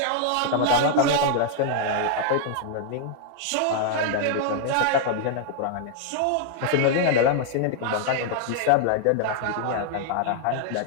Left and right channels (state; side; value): different; both; correlation -0.01